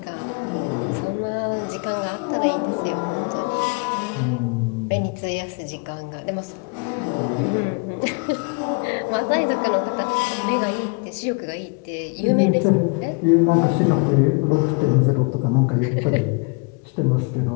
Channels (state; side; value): quieter; right; 33.6 dB